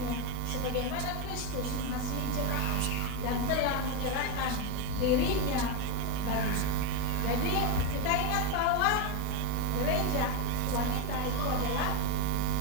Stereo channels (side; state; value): both; different; correlation 0.02